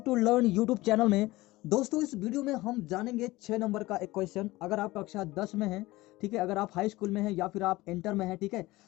learn YouTube channel में। दोस्तों, इस वीडियो में हम जानेंगे 6 नंबर का एक क्वेश्चन। अगर आप कक्षा 10 में हैं, ठीक है, अगर आप हाई स्कूल में हैं या फिर आप इंटर में हैं, ठीक है,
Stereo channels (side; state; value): right; quieter; 19.3 dB